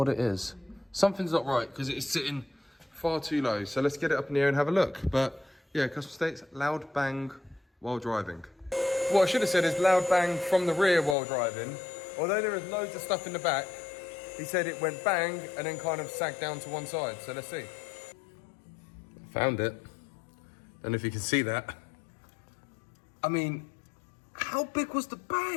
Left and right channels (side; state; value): right; drops out; at 11.2 s